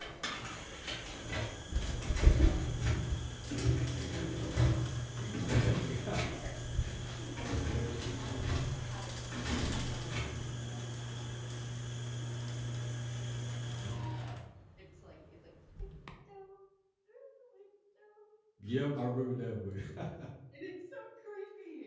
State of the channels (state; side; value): identical; both; correlation 1.00